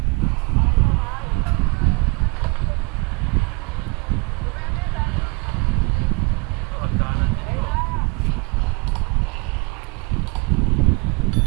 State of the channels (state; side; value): quieter; left; 29.2 dB